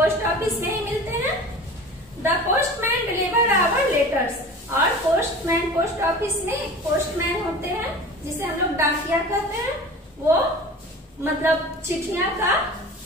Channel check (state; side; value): normal; both; correlation 0.38